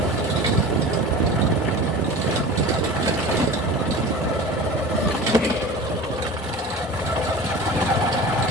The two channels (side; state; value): both; normal; correlation 0.35